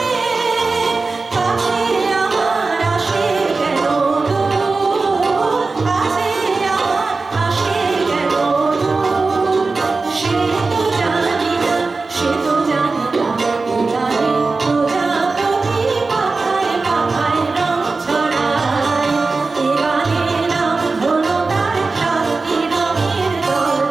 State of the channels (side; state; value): left; quieter; 3.9 dB